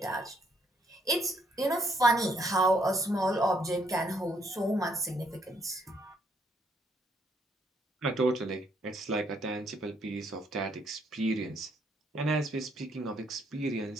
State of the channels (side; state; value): both; normal; correlation 0.70